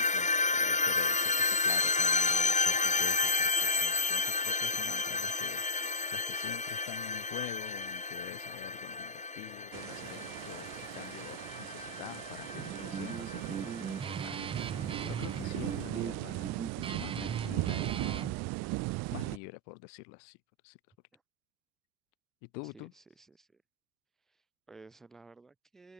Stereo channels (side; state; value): both; normal; correlation -0.18